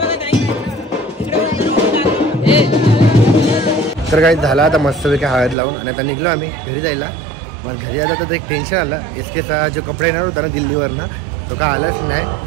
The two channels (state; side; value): drops out; left; at 5.6 s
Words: तर काही झाला आता मस्तपैकी हळद लावून आणि आता निघलो आम्ही घरी जायला. मग घरी आलं तर एक टेन्शन आलं. SKचा जो कपडा येणार होता ना दिल्लीवरनं तो काय आलाच नाही.